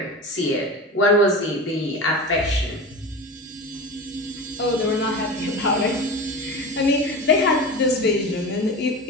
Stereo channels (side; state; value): both; normal; correlation 0.29